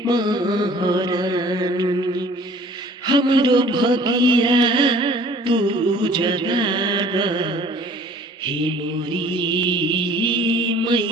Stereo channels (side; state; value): both; normal; correlation 0.51